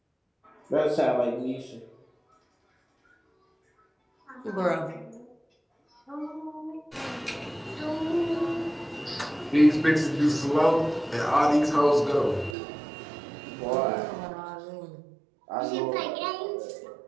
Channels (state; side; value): drops out; left; at 12.6 s